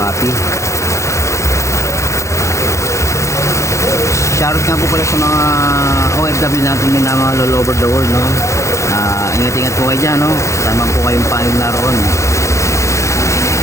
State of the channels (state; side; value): late; right; 0.14 ms